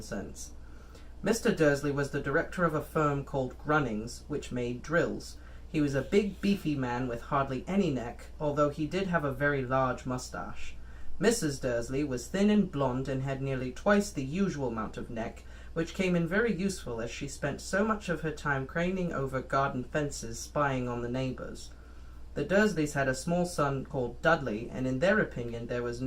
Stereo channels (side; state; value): both; identical; correlation 1.00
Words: Mr. Dursley was the director of a firm called Grunnings, which made drills. He was a big, beefy man with hardly any neck, although he did have a very large moustache. Mrs. Dursley was thin and blonde and had nearly twice the usual amount of neck, which came in very useful as she spent so much of her time craning over garden fences spying on the neighbours. The Dursleys had a small son called Dudley, and in their opinion there was